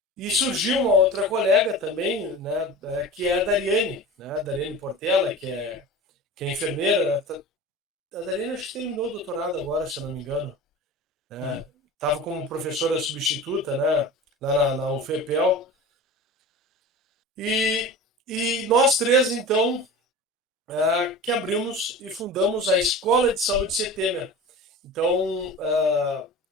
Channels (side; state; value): both; normal; correlation 0.34